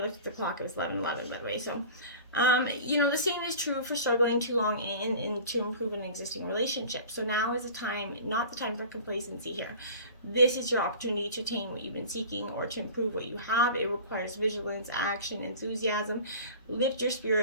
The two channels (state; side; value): inverted; both; correlation -0.40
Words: at the clock, it was 11:11, by the way. So the same is true for struggling too long in to improve an existing relationship. So now is not the time for complacency here. This is your opportunity to attain what you've been seeking or to improve what you have. It requires vigilance, action, enthusiasm. Lift your